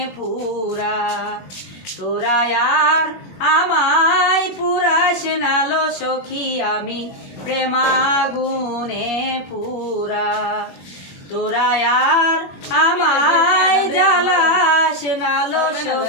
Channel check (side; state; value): right; late; 21 ms